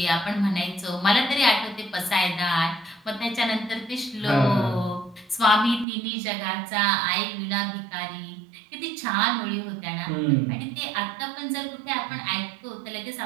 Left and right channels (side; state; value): left; drops out; at 5.9 s